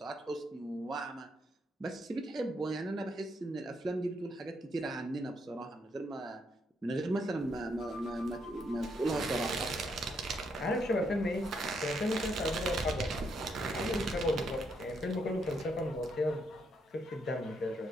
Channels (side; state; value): both; normal; correlation 0.76